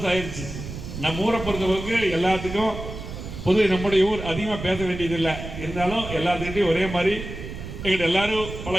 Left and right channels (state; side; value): noise; right; rumble, 9 dB below the sound